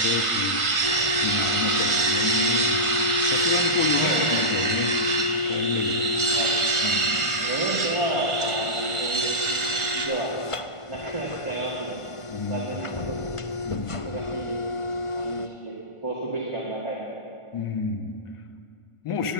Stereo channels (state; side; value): late; right; 1.4 ms